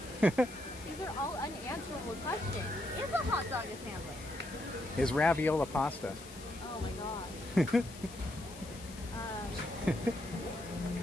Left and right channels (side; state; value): left; noise; hiss, 16 dB below the sound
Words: sandwich. These are all unanswerable questions. Is a hot dog a sandwich? Is raviola pasta? Oh my god. Is